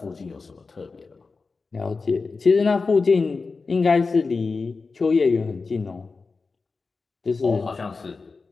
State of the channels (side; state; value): right; quieter; 4.3 dB